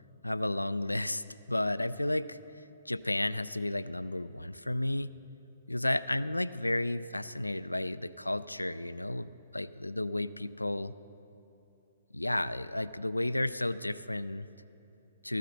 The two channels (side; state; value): both; inverted; correlation -0.98